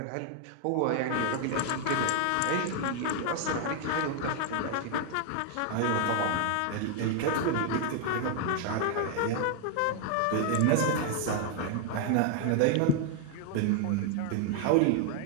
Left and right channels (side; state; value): both; different; correlation 0.00